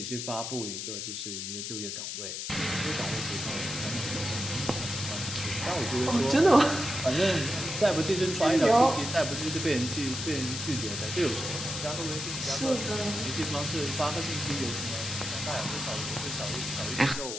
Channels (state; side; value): noise; left; hiss, 5 dB below the sound